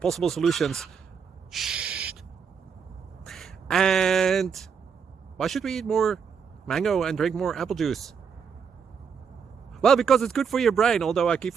solutions. Shh. And why should we eat more mango and drink more apple juice? Well, because it's good for your brain, although I keep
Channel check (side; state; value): left; quieter; 6.5 dB